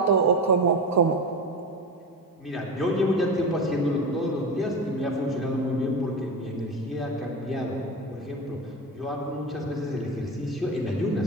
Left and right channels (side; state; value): both; normal; correlation 0.24